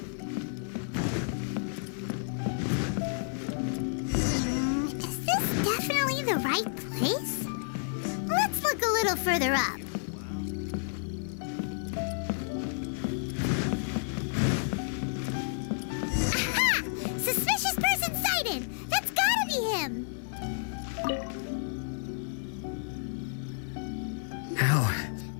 Is this definitely the right place? Let's look a little further up. Aha! Suspicious person sighted! That's gotta be him!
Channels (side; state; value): right; silent; 57 dB below the other